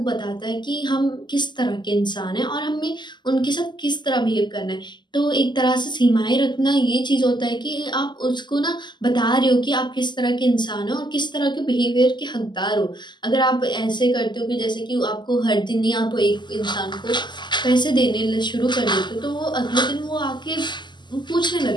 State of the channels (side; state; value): right; late; 0.21 ms